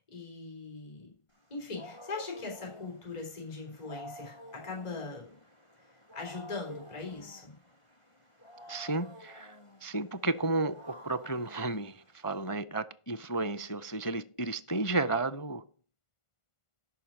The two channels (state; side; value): late; right; 1.5 ms